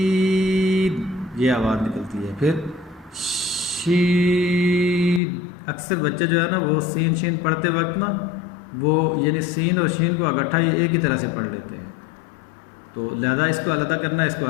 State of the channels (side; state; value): right; drops out; at 5.2 s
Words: یہ آواز نکلتی ہے۔ پھر شین، اکثر بچے جو ہے نا وہ سین شین پڑھتے وقت نا وہ یعنی سین اور شین کو اکٹھا ہی ایک ہی طرح سے پڑھ لیتے ہیں، تو لہذا اس کو علیحدہ کرنا ہے، اس کو